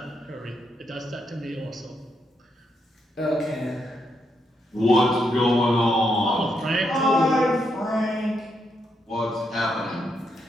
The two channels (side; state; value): both; normal; correlation 0.79